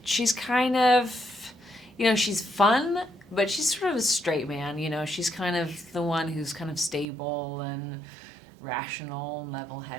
She's kind of, you know, she's fun, but she's sort of a straight man. You know, she's kind of the one who's kind of stable and rational and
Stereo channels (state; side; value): drops out; left; at 7.1 s